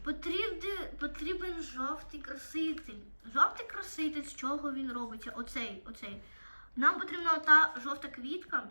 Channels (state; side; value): inverted; both; correlation -1.00